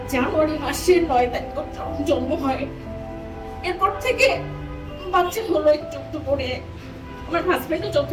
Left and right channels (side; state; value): both; identical; correlation 1.00